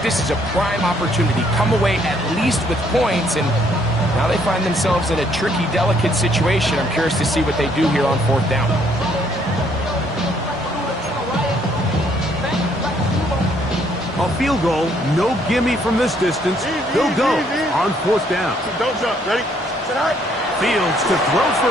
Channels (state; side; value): normal; both; correlation 0.67